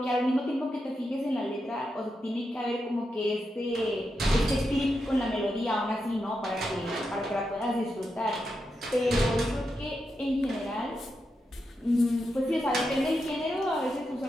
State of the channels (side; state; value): both; normal; correlation 0.86